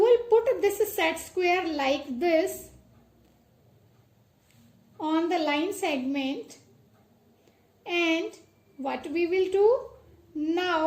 put this set square like this on the line segment, and what we will do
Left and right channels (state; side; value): identical; both; correlation 1.00